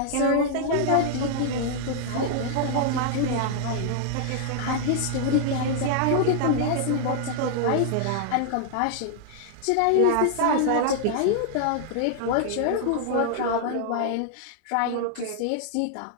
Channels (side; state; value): both; different; correlation -0.01